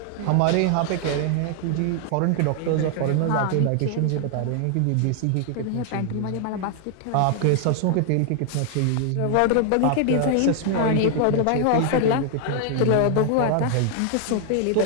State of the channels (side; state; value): both; different; correlation 0.00